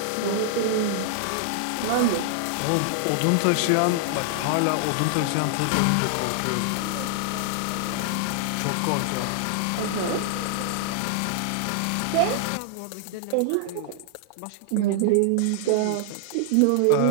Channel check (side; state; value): both; different; correlation 0.00